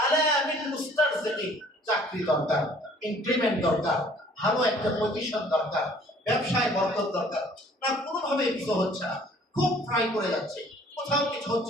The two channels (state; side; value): normal; both; correlation 0.55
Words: আলা মিন মুস্তারজিকি, চাকরি দরকার, ইনক্রিমেন্ট দরকার, ভালো একটা পজিশন দরকার, ব্যবসায় বরকত দরকার, না কোনোভাবে কিছু হচ্ছে না, খুব ট্রাই করে যাচ্ছে, কোথাও কিছু